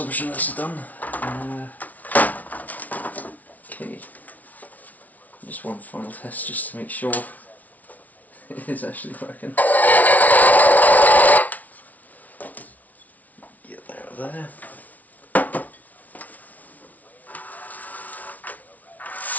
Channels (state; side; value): late; right; 0.074 ms